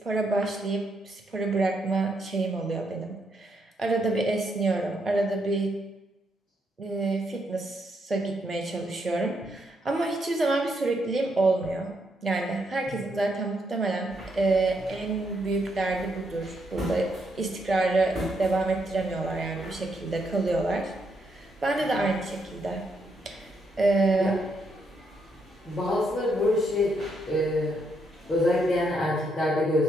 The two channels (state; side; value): normal; both; correlation 0.77